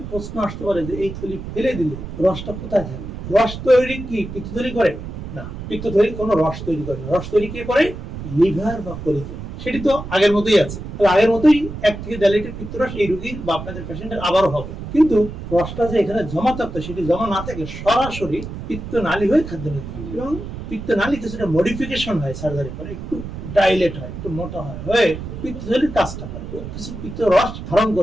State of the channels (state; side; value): noise; right; rumble, 9 dB below the sound